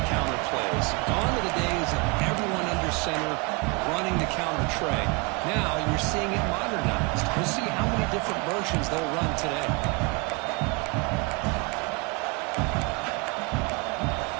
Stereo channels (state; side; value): quieter; left; 29.0 dB